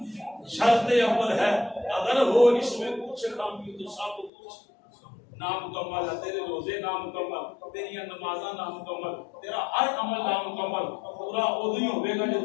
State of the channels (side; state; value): right; drops out; at 4.3 s